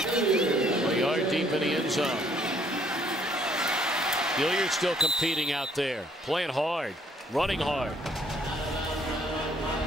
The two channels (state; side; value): normal; both; correlation 0.64